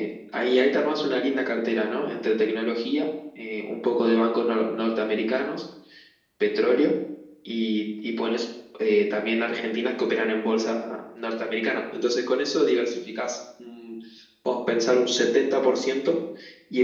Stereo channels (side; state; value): both; identical; correlation 1.00